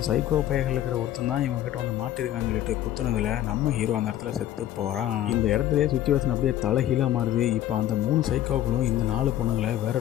சைக்கோ பையர்கள் இருக்கிற ஒருத்தன் தான் இவங்க கிட்ட வந்து மாட்டிருக்கான்னு சொல்லிட்டு குத்துனதுல நம்ம ஹீரோ அந்த இடத்துல செத்து போறான். இந்த இடத்துல சுச்சுவேஷன் அப்படியே தலைகீழா மாறுது. இப்ப அந்த 3 சைக்கோக்களும் இந்த 4 பொண்ணுங்களை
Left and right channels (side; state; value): right; quieter; 12.5 dB